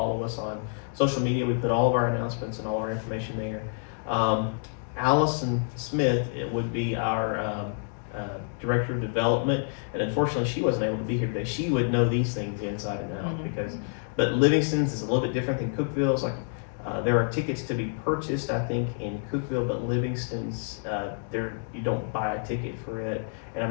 us on social media. We put all of our announcements and all our information there. Allison Smith, it would be our Director of Development, and unfortunately she wasn't able to be here today. She would know these things inside and out but Livingston's is a little bit different than Cookeville's. Like there are tickets to be purchased, I think, in Cookeville, but Livingston's, you don't buy a ticket for it, and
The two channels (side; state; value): right; silent; 59 dB below the other